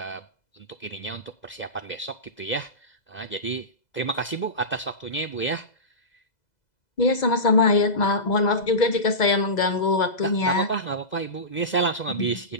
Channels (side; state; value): right; late; 2.0 ms